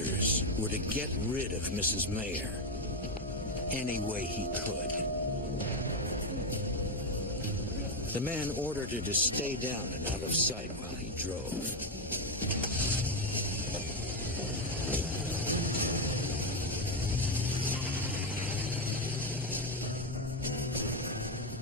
were to get rid of Mrs. Mayer any way he could. The man ordered her to stay down and out of sight while he drove.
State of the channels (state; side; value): normal; both; correlation 0.08